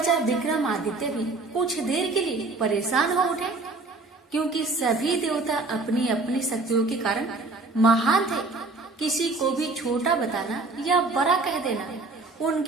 विक्रमादित्य भी कुछ देर के लिए परेशान हो उठे, क्योंकि सभी देवता अपनी अपनी शक्तियों के कारण महान थे। किसी को भी छोटा बताना या बड़ा कह देना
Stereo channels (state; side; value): quieter; left; 3.4 dB